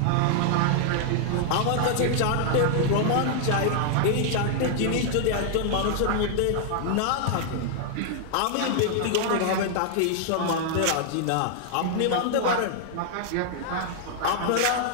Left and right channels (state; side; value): different; both; correlation -0.01